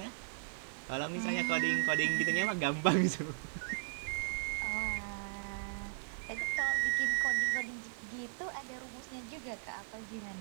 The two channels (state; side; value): silent; left; digital silence